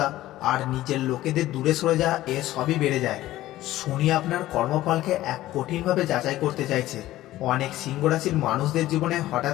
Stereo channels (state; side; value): quieter; right; 15.3 dB